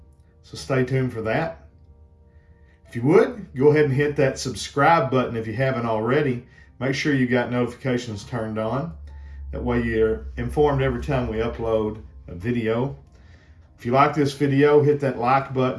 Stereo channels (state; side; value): identical; both; correlation 1.00